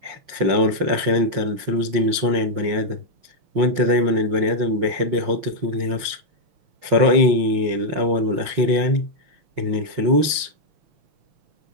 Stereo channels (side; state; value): left; late; 5.7 ms